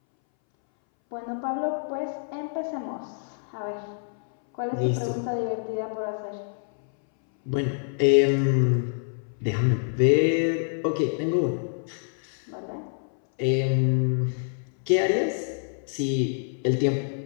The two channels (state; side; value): silent; right; 61 dB below the other